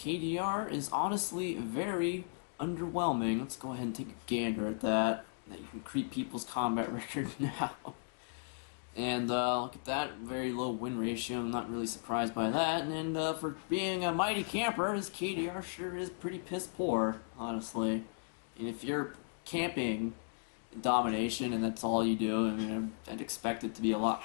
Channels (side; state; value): right; silent; digital silence